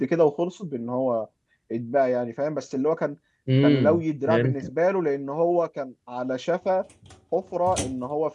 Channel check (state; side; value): identical; both; correlation 1.00